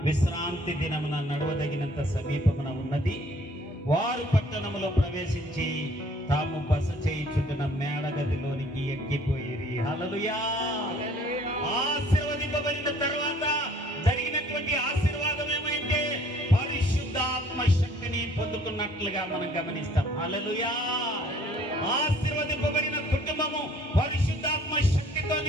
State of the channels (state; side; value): normal; both; correlation 0.57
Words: విశ్రాంతి దినమున నడవదగినంత సమీపమున ఉన్నది. వారు పట్టణములో ప్రవేశించి తాము బస చేయుచుండిన మేడగదిలోనికి ఎక్కిపోయిరి. హల్లెలూయా. ఆశీర్వదింపబడిన తర్వాత జరిగినటువంటి ఆశీర్వాదం ఏమైతే పరిశుద్ధాత్మ శక్తిని పొందుకున్నట్లుగా మనం గమనిస్తాం. హల్లెలూయా. ఆశీర్వదింపబడిన కుటుంబము పరిశుద్ధాత్మ శక్తితో